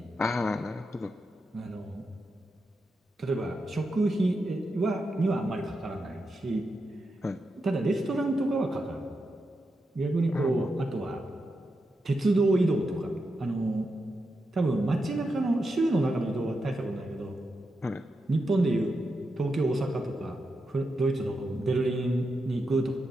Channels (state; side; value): normal; both; correlation 0.87